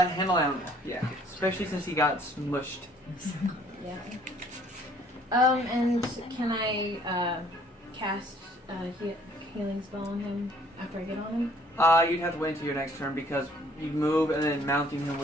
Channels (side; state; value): both; normal; correlation 0.60